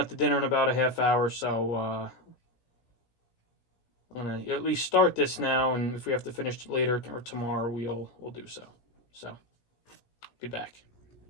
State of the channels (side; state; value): right; late; 17 ms